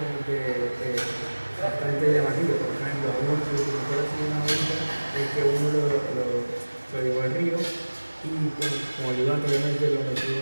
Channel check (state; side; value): inverted; both; correlation -1.00